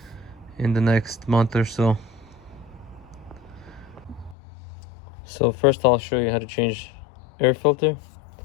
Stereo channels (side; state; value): right; drops out; at 4.4 s